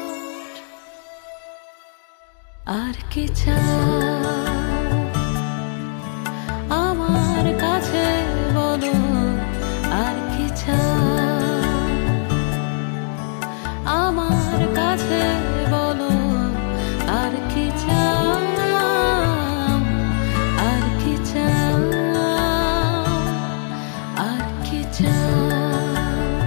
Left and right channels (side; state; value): right; silent; digital silence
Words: আর কি চাও আমার কাছে বলো, আর কি চাও আমার কাছে বলো, আর কি চাও, আর কি চাও, আর কি চাও